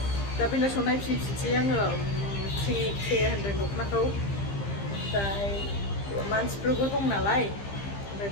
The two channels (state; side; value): late; right; 15 ms